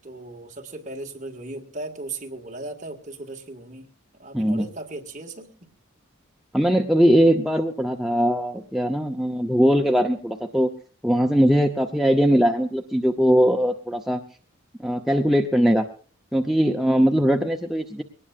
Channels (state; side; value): normal; both; correlation 0.92